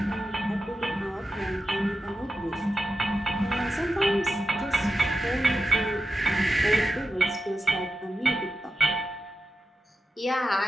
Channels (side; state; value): both; normal; correlation 0.91